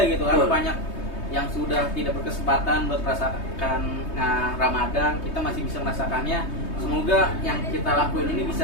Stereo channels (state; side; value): late; right; 3.2 ms